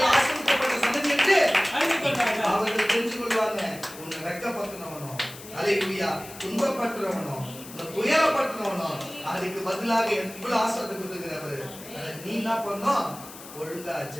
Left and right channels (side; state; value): left; noise; hiss, 16 dB below the sound